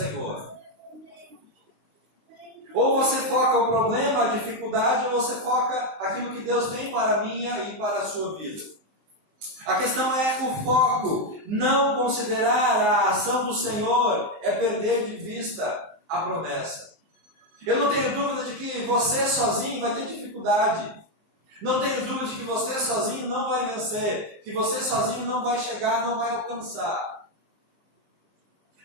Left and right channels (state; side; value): late; left; 19 ms